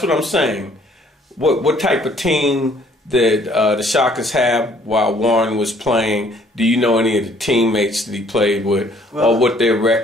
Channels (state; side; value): normal; both; correlation 0.61